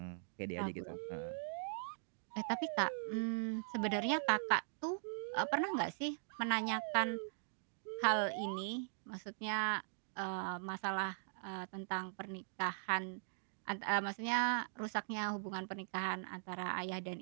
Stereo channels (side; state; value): left; silent; digital silence